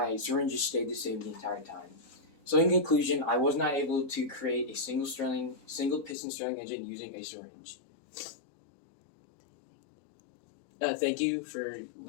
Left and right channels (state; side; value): drops out; right; at 6.2 s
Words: syringes stayed the same the entire time. So in conclusion, I was not able to create a single piston Stirling engine using a syringe. Thank you for